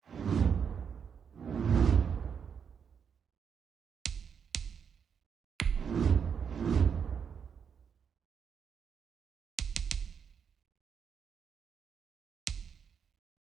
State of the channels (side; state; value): left; quieter; 7.0 dB